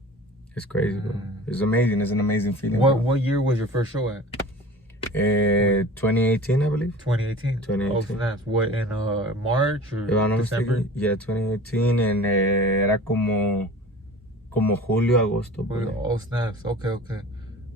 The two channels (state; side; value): normal; both; correlation 0.40